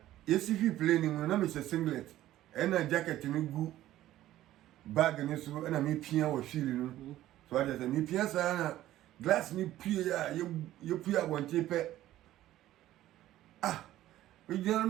yesifi plane na me say singlet na jacket ni gu bag ni so na me pia wo feel no so what I say me pia sa na glass ni pia ye pia bonte pe we just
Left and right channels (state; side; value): quieter; left; 14.1 dB